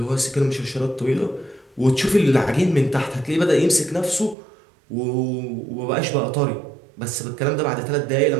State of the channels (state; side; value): drops out; left; at 4.4 s